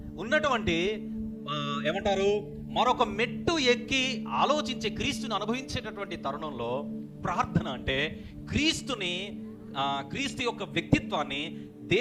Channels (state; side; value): identical; both; correlation 1.00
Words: ఉన్నటువంటి ఏమంటారు, మరొక మెట్టు ఎక్కి ఆలోచించే, క్రీస్తుని అనుభవించేటటువంటి తరుణంలో ప్రార్థన అంటే క్రీస్తు యొక్క వ్యక్తిత్వాన్ని,